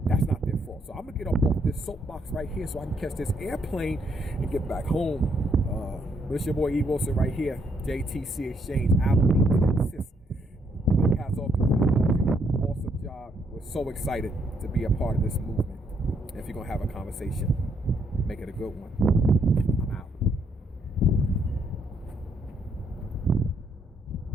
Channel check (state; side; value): normal; both; correlation 0.73